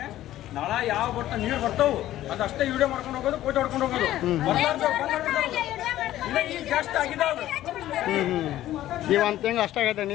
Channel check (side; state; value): right; quieter; 13.8 dB